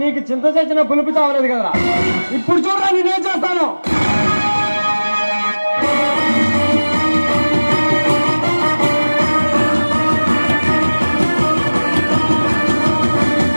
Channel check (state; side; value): inverted; both; correlation -1.00